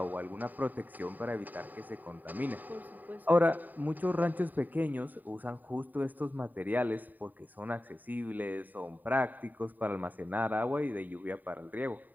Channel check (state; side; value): late; left; 0.086 ms